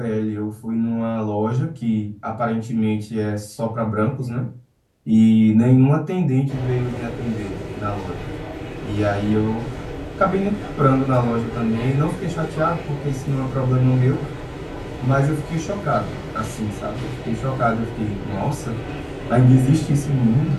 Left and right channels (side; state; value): both; identical; correlation 1.00